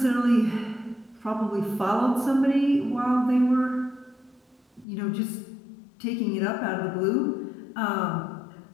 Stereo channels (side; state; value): right; drops out; at 4.9 s